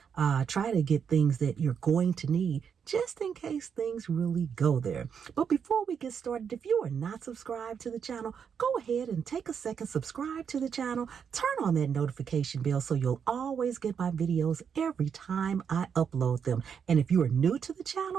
try to get things that you're going to need just in case things really go there. But before we get started, if you are not subscribed to the channel, go ahead and take a second, subscribe to the channel, turn on that notification bell so you'll always get my videos every time I upload them. And if you are new to the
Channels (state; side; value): quieter; left; 7.1 dB